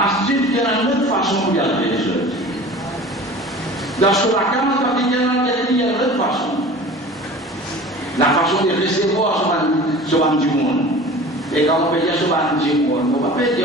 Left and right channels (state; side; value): normal; both; correlation 0.40